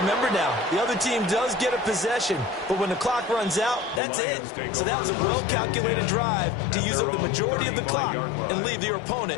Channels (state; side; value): drops out; right; at 4.0 s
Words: now, the other team does get a possession, but when the clock runs out, that's it. So that was a well-calculated drive to use up the majority of the clock and leave your